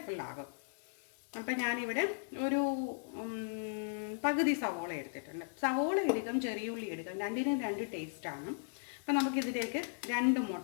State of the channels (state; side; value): silent; right; digital silence